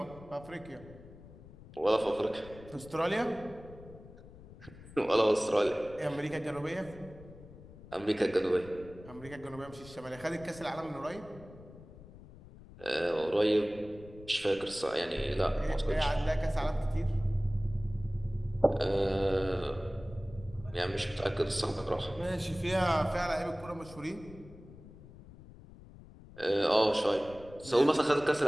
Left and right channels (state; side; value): noise; left; rumble, 18 dB below the sound